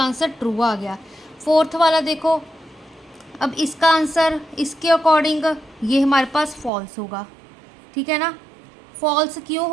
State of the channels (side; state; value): left; drops out; at 6.7 s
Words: आंसर ट्रू आ गया। फोर्थ वाला देखो, अब इसका आंसर इसके अकॉर्डिंग ये हमारे पास फॉल्स होगा, ठीक है ना। फॉल्स क्यों